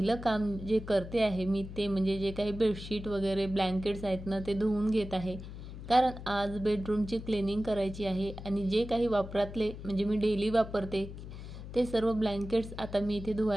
काम जे करते आहे मी ते म्हणजे जे काही बेडशीट वगैरे ब्लँकेट्स आहेत ना ते धुवून घेत आहे, कारण आज बेडरूमची क्लिनिंग करायची आहे। आणि जे काही वापरातले म्हणजे मी डेली वापरते ते सर्व ब्लँकेट्स आता मी इथे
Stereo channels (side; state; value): left; noise; hum, 11 dB below the sound